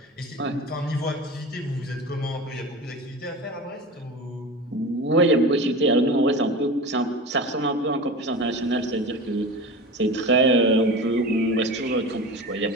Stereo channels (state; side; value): normal; both; correlation 0.30